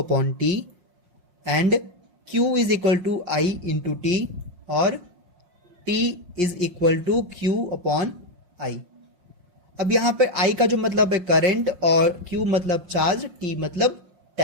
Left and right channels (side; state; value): left; late; 5.6 ms